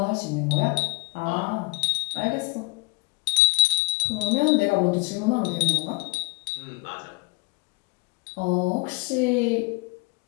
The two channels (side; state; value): right; quieter; 30.5 dB